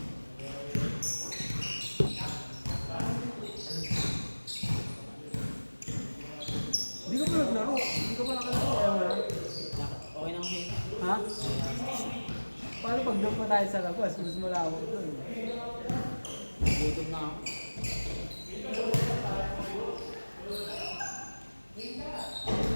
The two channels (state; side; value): inverted; both; correlation -1.00